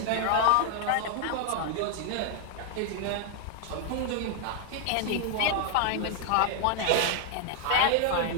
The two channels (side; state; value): both; different; correlation 0.00